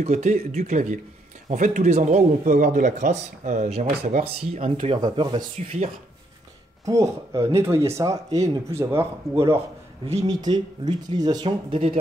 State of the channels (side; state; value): both; normal; correlation 0.74